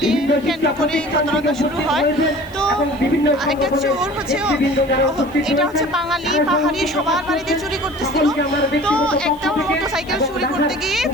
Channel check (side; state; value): left; noise; hiss, 27 dB below the sound